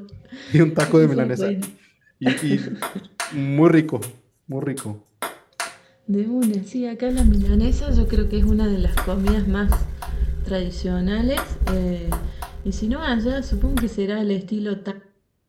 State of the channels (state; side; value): identical; both; correlation 1.00